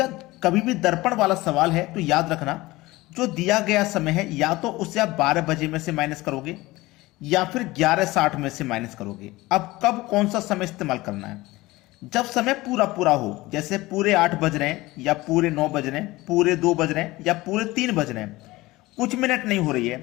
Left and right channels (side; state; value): right; quieter; 19.7 dB